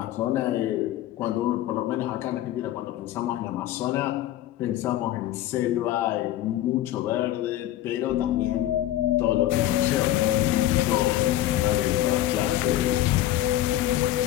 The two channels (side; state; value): right; quieter; 13.7 dB